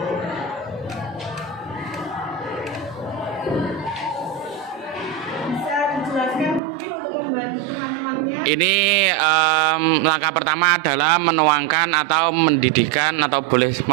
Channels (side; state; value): left; drops out; at 6.6 s